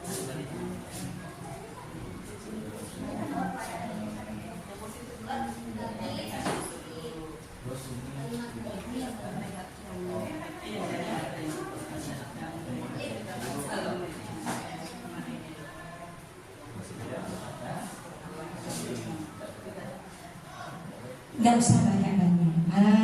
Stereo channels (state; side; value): identical; both; correlation 1.00